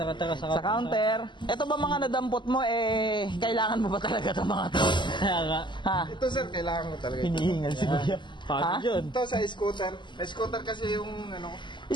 Sa counter. Ito ba mga nadampot mo, kailangan mo ba talaga itong mga to? Kaya nga. Ha? Ito, sir, kailangan ko talaga. Hinihingal si Kuya. Pagod yun. Ito sa scooter. May scooter kasi yung ano.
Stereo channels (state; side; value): late; right; 0.22 ms